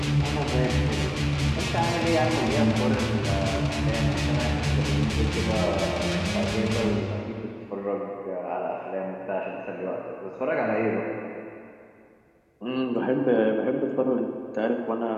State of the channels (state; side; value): identical; both; correlation 1.00